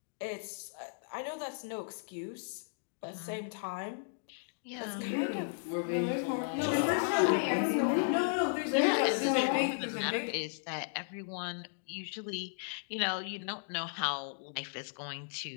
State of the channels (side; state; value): right; silent; digital silence